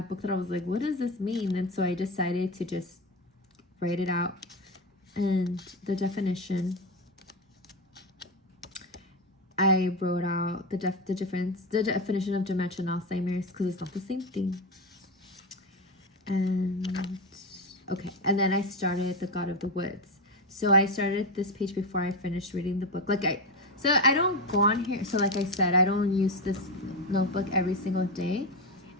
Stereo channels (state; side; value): normal; both; correlation 0.15